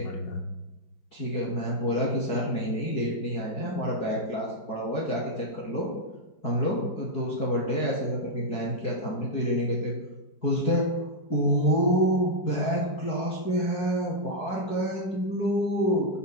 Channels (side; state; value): right; late; 4.7 ms